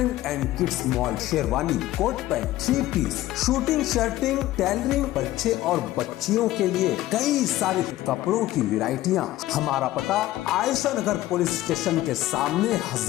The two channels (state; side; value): quieter; right; 15.5 dB